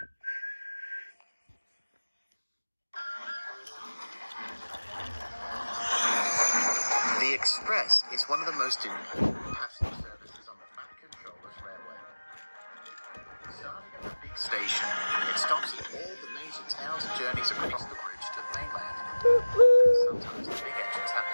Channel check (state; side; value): inverted; both; correlation -1.00